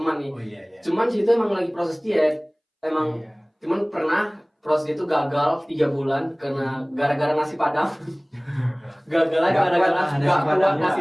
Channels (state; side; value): identical; both; correlation 1.00